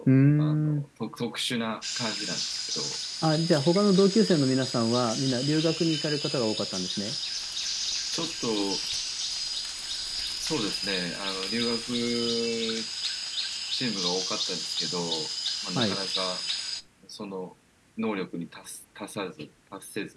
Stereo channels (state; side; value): identical; both; correlation 1.00